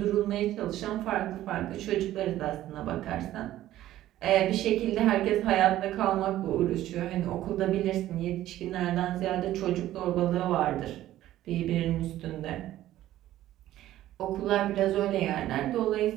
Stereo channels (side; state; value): left; quieter; 13.9 dB